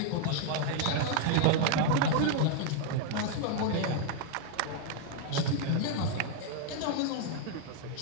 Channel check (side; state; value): both; different; correlation 0.00